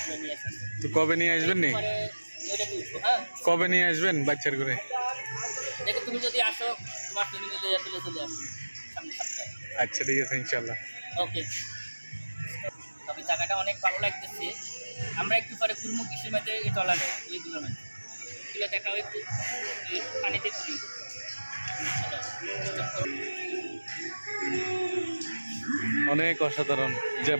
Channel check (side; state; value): both; inverted; correlation -1.00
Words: নিয়ে আসেন। তো কবে নিয়ে আসবেন নি? পরে ওইটাকে উঠবো। হ্যাঁ, কবে নিয়ে আসবেন বাচ্চার করে? দেখো তুমি যদি আসো তোমার তুমি মিলে তুলে চলে আসো সামনে সপ্তাহে। আচ্ছা ঠিক আছে, ইনশাল্লাহ। ওকে, তবে জায়গাটা অনেক ভালো লাগতেছে। আমরা একটু পরে ঘুরবো কৃষির মাঝে, এই টলারে এইগুলো মাঝে এগুলো দেখাও একটু, পানিতে ঘুরি। অনেক অসাধারণ